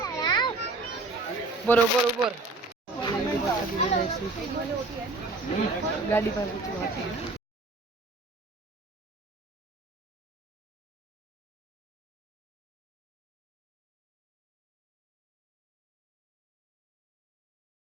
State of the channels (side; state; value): left; quieter; 3.1 dB